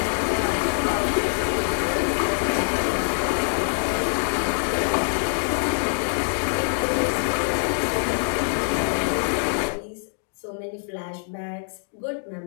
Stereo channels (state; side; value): silent; right; digital silence